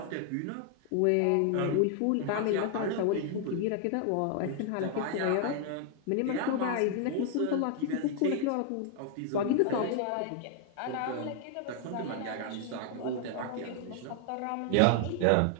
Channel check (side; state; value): both; different; correlation 0.00